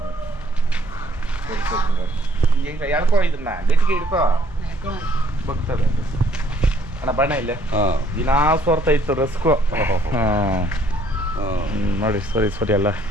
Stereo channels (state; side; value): normal; both; correlation 0.64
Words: ಈಗ ಎಳ್ಕೊ, ಇದನ್ನ ಗಟ್ಟಿಗೆ ಹಿಡ್ಕೊ, ಬಗ್ತದೆ ಅಣ್ಣ. ಬಣ್ಣ ಇಲ್ಲೇ ದಿನಾ ಸೋರ್ತಾ ಇತ್ತು ರಸ್ಕು. ನೋಡಿ ಸರಿ ಅಲ್ಲ.